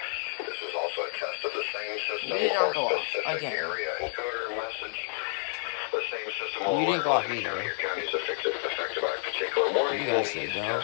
This was also a test of the same system You did or not go off specific again. area encoder message. The same system will You didn't go alert off all either. your counties affected by a particular warning. You guys These said no.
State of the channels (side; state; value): right; silent; digital silence